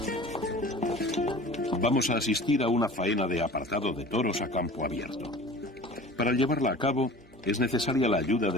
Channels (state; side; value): normal; both; correlation 0.41